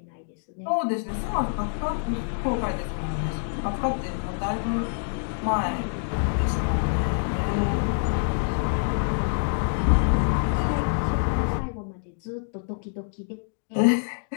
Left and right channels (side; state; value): right; silent; digital silence